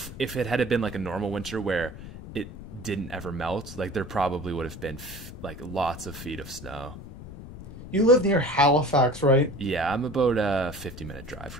it had been like a normal winter where it didn't ever melt, like there probably would have been like lots of feet of snow. You live near Halifax, right? Yeah, I'm about a 50-minute drive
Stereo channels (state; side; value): noise; left; rumble, 13 dB below the sound